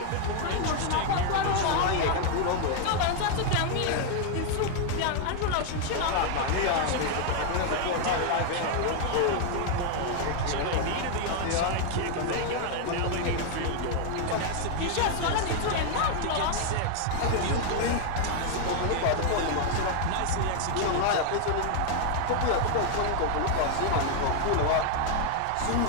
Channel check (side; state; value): both; different; correlation 0.00